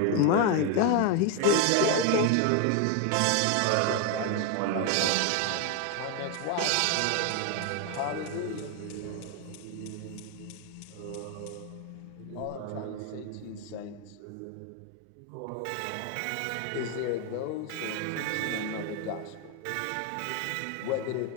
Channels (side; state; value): both; different; correlation 0.01